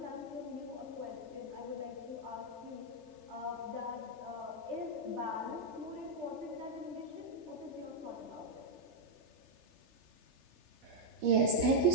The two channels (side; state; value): left; late; 3.3 ms